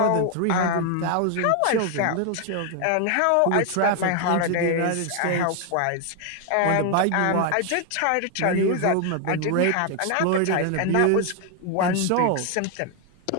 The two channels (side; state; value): both; different; correlation 0.00